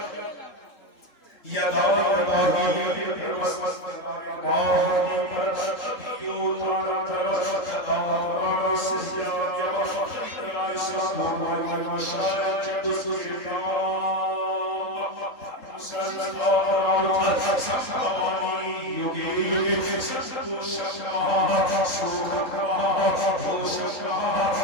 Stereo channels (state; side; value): late; right; 3.6 ms